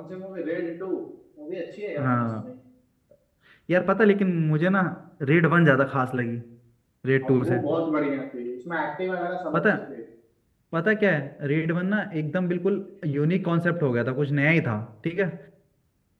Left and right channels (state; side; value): identical; both; correlation 1.00